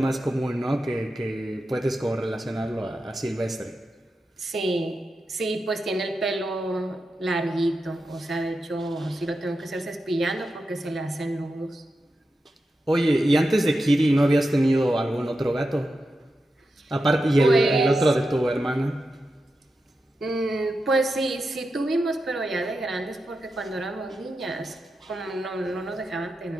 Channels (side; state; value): both; normal; correlation 0.89